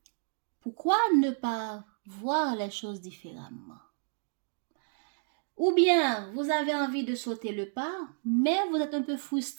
Pourquoi ne pas voir les choses différemment? Ou bien, vous avez envie de sauter le pas, mais vous êtes un peu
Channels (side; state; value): left; silent; digital silence